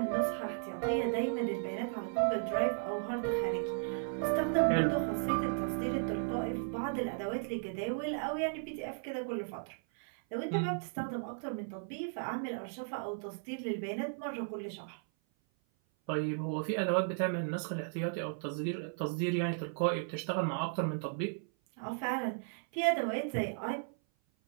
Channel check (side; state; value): left; silent; 54 dB below the other